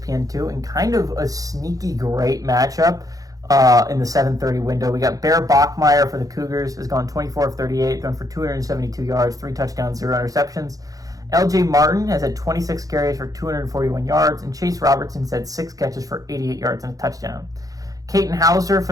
and kind of a sneaky great matchup in the 7:30 window. We got Bear Bachmeier for the Cougars, has gone 24 of 38, thrown for 272 yards, 3 touchdowns, 0 interceptions. LJ Martin has had 26 carries for 241 yards, and Chase Robertson's had 6 catches for 88 yards and a touchdown. Caton Hauser for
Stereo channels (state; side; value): late; left; 0.17 ms